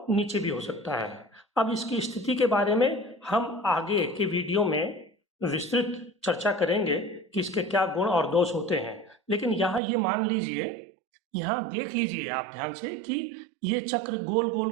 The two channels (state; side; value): drops out; left; at 9.8 s